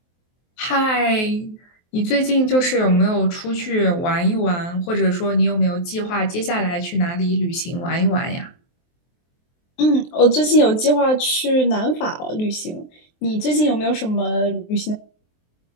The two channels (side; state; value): right; late; 23 ms